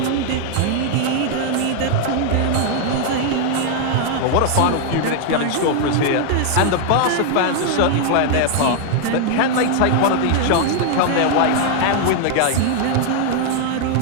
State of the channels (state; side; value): different; both; correlation 0.00